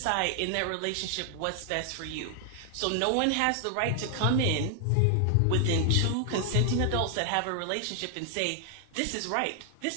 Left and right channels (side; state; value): both; different; correlation 0.00